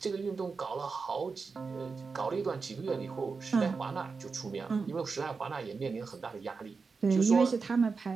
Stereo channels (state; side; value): quieter; left; 4.7 dB